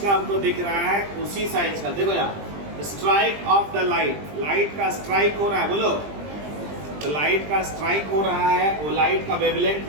का हमको दिख रहा है, उसी साइज का। देखो यहाँ strike off the light, light का स्ट्राइक हो रहा है, बोलो। तो लाइट का स्ट्राइक हो रहा है, वो लाइट का वेवलेंथ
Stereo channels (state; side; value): late; left; 20 ms